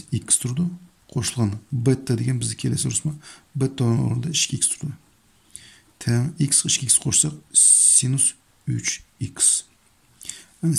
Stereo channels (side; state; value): both; identical; correlation 1.00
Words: x turdi, qo'shilgan beta degan bizga kelasi rusma beta o'rnida 2x turdi. Teng x 2x qo'shsak sinus 3x. Yani